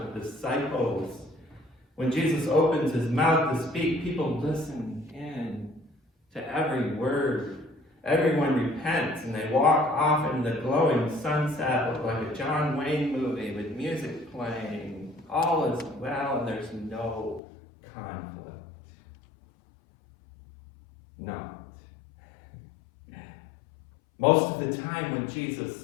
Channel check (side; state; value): right; drops out; at 17.4 s